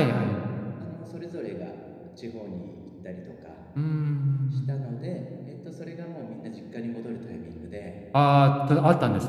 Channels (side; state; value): both; identical; correlation 1.00